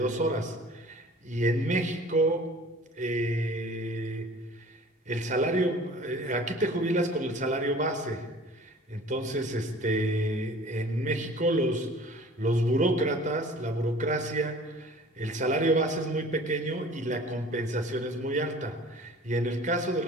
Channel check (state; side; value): normal; both; correlation 0.47